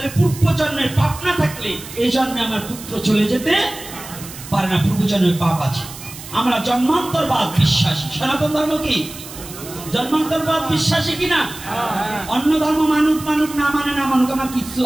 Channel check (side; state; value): right; noise; hiss, 14 dB below the sound